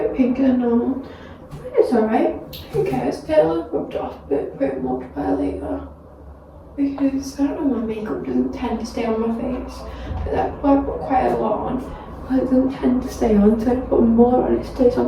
pinker than normal. It's alright. Who cares? It'll have rubbed off a bit much by later. Because I don't know, my makeup doesn't tend to stay on my face. But that's why I put quite a lot on. But it doesn't tend to stay on, so I put more on, it stays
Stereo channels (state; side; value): identical; both; correlation 1.00